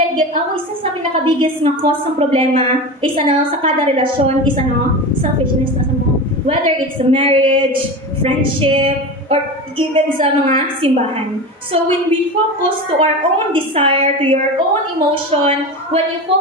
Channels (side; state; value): both; normal; correlation 0.26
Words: sa pinaka-biggest nga cause ng problema is sa kada relasyon is selfishness na sa mo. Whether it's a marriage, friendship, or even sa mga simbahan. So when we focus to our own desire, to your own emotion, when you